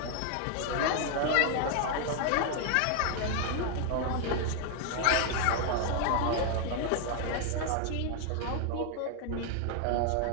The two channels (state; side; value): different; both; correlation 0.00